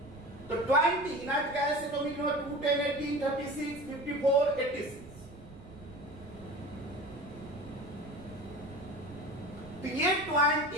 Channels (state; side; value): noise; right; rumble, 17 dB below the sound